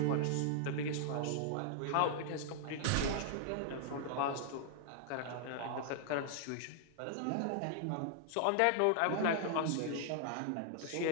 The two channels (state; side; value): different; both; correlation -0.01